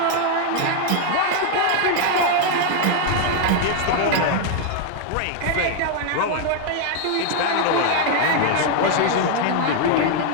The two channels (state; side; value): different; both; correlation 0.00